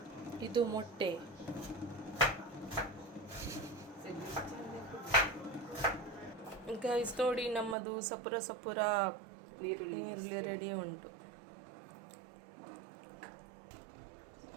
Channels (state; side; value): drops out; left; at 7.8 s